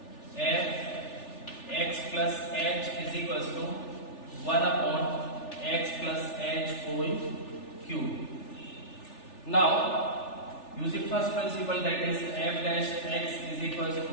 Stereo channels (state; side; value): late; right; 3.4 ms